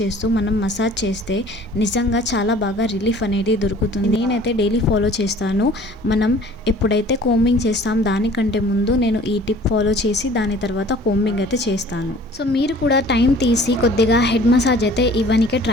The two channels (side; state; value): both; normal; correlation 0.50